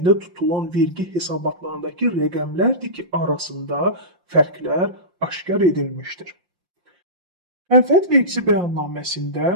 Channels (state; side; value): late; left; 5.7 ms